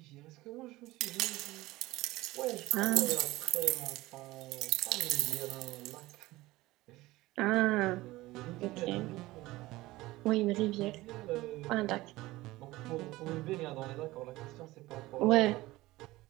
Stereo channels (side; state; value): left; quieter; 18.7 dB